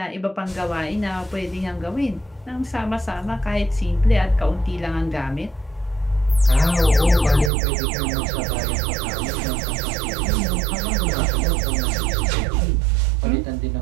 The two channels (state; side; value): drops out; left; at 7.5 s